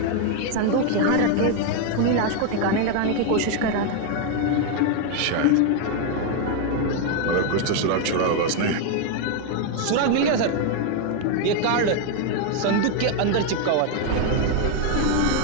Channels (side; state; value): both; different; correlation 0.00